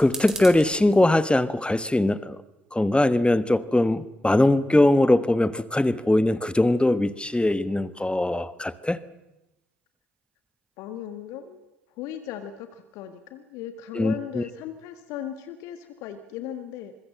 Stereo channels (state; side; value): normal; both; correlation 0.94